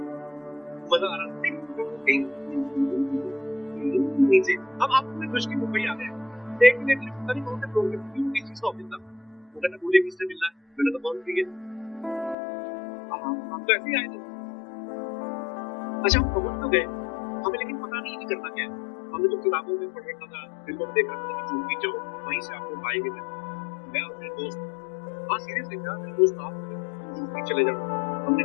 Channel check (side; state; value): right; drops out; at 12.4 s